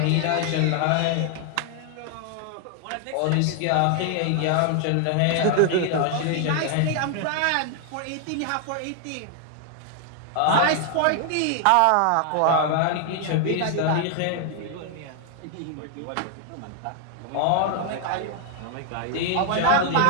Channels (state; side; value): different; both; correlation 0.00